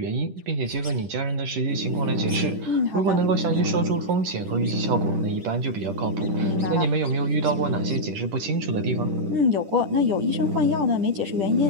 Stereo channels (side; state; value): left; late; 10 ms